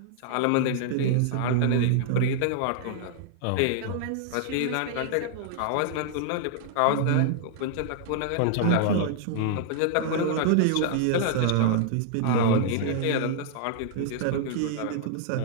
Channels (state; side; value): different; both; correlation -0.01